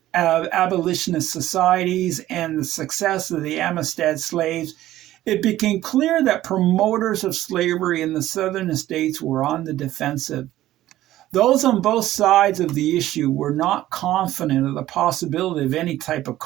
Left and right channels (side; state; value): left; quieter; 14.5 dB